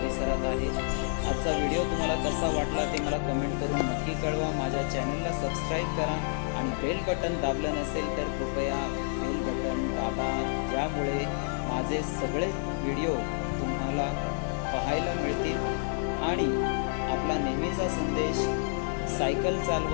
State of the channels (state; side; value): silent; right; digital silence